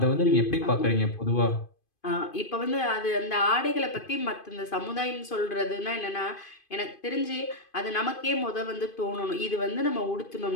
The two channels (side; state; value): right; late; 2.5 ms